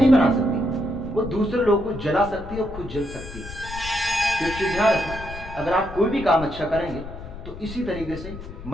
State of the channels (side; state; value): left; noise; rumble, 12 dB below the sound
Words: बना सकती, वो दूसरे लोगों को जला सकती है और खुद जल सकती है। तो ध्यान रखना, अगर आप कोई भी काम अच्छा करेंगे तो इसी तरीके से